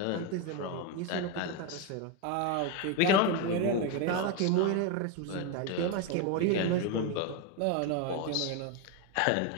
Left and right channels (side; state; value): both; different; correlation 0.02